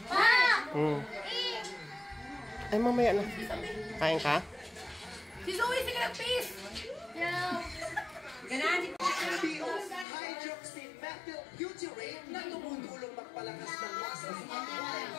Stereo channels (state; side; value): drops out; right; at 10.1 s